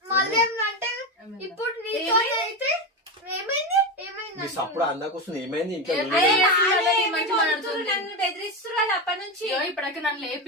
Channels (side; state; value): both; normal; correlation 0.15